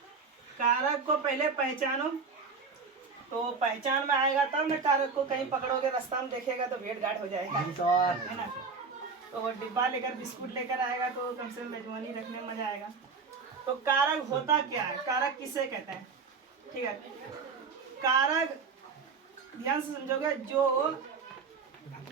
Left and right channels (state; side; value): quieter; left; 5.0 dB